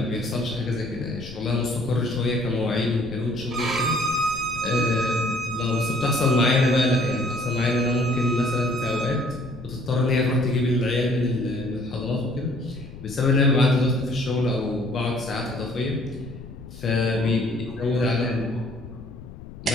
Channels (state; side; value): noise; left; rumble, 15 dB below the sound